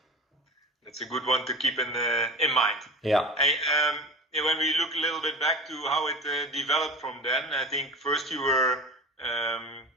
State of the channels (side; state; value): both; normal; correlation 0.34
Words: That's a good one to keep in mind. When we look a little bit back to how it developed from then, I think first you were